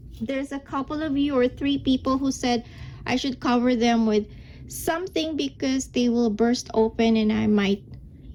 there's a couple of you or 3 people who said I should cover them with something because they will burst open and I might,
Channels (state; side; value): identical; both; correlation 1.00